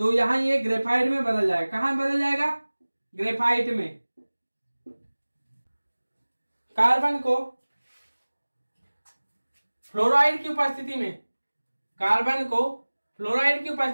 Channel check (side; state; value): both; inverted; correlation -1.00